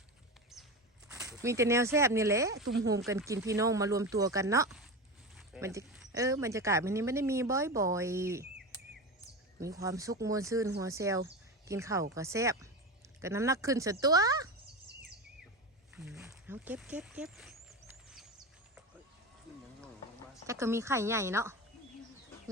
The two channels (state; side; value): normal; both; correlation 0.23